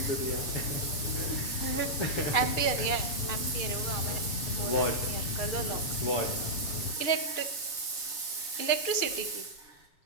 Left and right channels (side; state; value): right; late; 7.2 ms